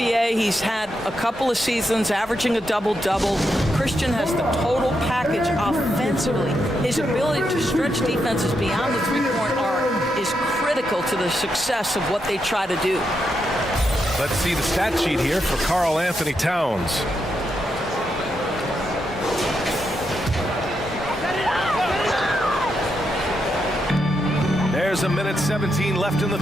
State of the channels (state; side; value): normal; both; correlation 0.83